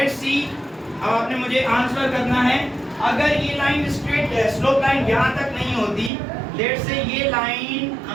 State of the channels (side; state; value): left; drops out; at 6.1 s